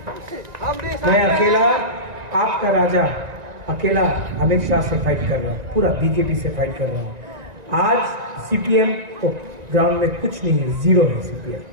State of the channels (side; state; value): left; late; 1.9 ms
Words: मैं अकेला आपका राजा, अकेला अमित शाह से फाइट कर रहा हूँ, पूरा बीजेपी से फाइट कर रहा हूँ। आज सीपीएम तो ग्राउंड में कुछ नहीं है, 0 है सीपीएम,